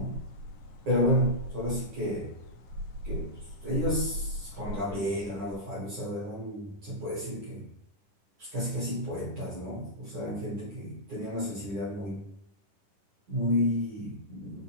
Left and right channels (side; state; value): left; late; 9.9 ms